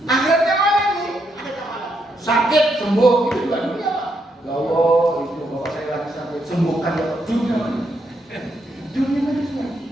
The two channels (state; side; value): normal; both; correlation 0.78